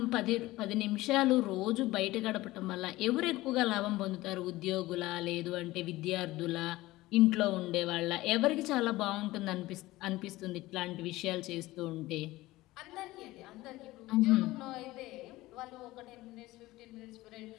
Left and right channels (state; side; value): quieter; right; 18.3 dB